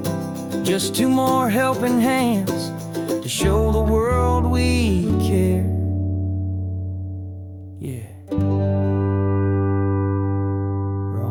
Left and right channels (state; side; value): identical; both; correlation 1.00